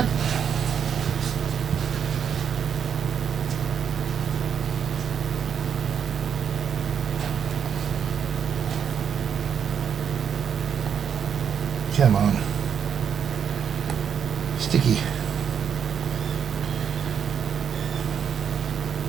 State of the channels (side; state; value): left; quieter; 7.8 dB